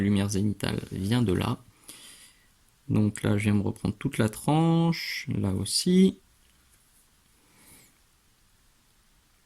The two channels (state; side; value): identical; both; correlation 1.00